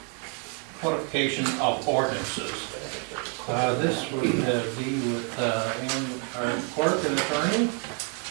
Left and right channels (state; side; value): quieter; left; 39.6 dB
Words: Codification of ordinances. This would be with our clerk and attorney, is